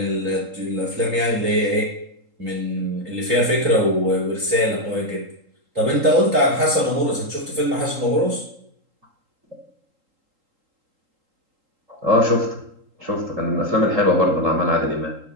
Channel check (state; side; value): late; left; 3.8 ms